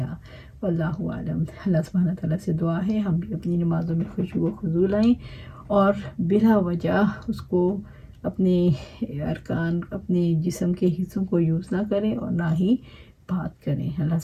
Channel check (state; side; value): identical; both; correlation 1.00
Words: واللہ اعلم۔ اللہ سبحانہ تعالیٰ سے دعا ہے ہم بھی اپنی نمازوں میں خشوع و خضوع لائیں اور بلا وجہ اس کو اپنے ارکان، اپنے جسم کے حصوں کو یوز نہ کریں اور نہ ہی بات کریں۔ اللہ